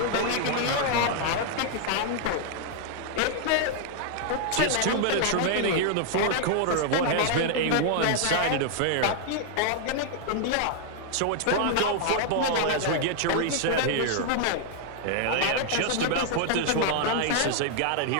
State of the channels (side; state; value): both; different; correlation 0.00